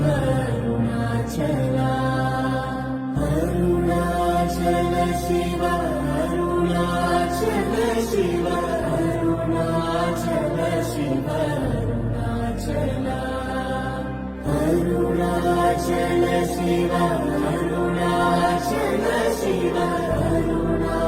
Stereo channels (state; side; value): identical; both; correlation 1.00